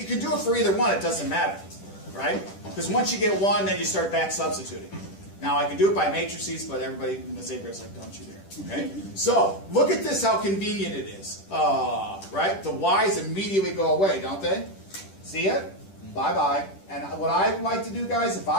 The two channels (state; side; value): late; right; 10 ms